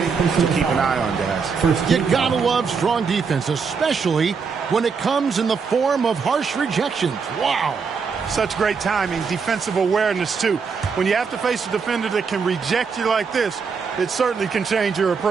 to keep an eye on, guys. You gotta love strong defense, especially when it comes in the form of harsh rejections. Wow. Such great timing, defensive awareness, too. When you have to face a defender that can reject you like this, it certainly can change your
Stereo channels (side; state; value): left; quieter; 5.6 dB